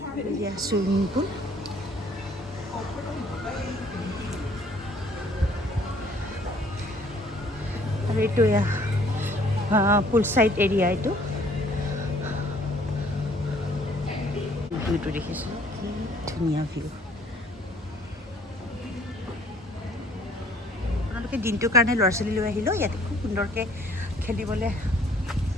চুইমিং পুল আৰু এইটো এয়া পুল চাইড এৰিয়া এইটো ভিউটো দেখিছোঁ ধুনীয়া ভিউ আপোনালোকে দিনটোৰ কাৰণে ল'ৰা ছোৱালী লৈ আহিলেও ইয়াতে খুব সুন্দৰকৈ খেলিবলৈ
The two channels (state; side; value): normal; both; correlation 0.59